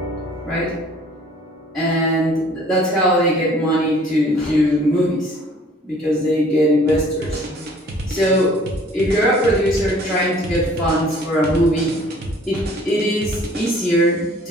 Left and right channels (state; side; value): normal; both; correlation 0.54